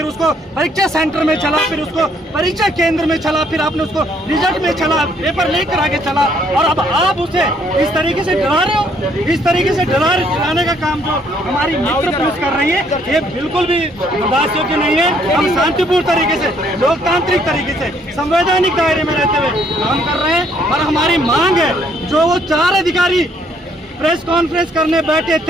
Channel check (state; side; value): normal; both; correlation 0.66